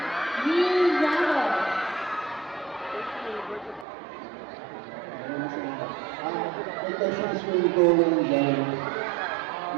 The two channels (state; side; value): drops out; left; at 3.9 s